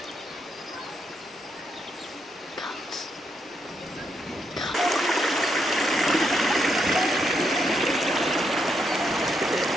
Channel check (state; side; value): normal; both; correlation 0.79